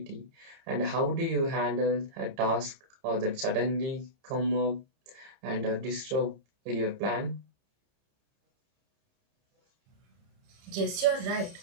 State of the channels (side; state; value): left; late; 30 ms